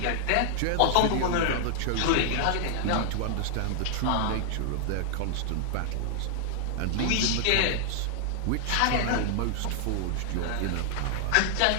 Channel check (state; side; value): different; both; correlation -0.01